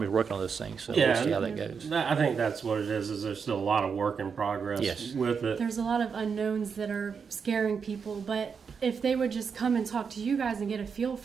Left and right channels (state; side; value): quieter; left; 6.1 dB